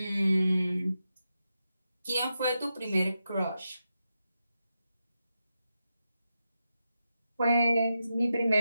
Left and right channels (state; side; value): inverted; both; correlation -0.88